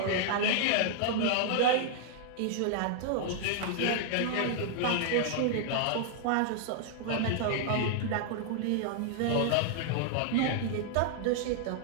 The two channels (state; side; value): different; both; correlation -0.01